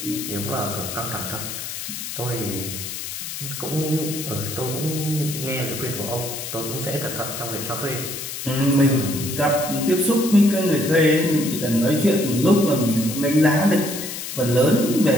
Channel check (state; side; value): noise; left; hiss, 7 dB below the sound